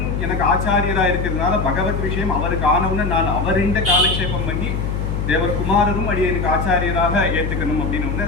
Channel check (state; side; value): noise; left; hum, 2 dB below the sound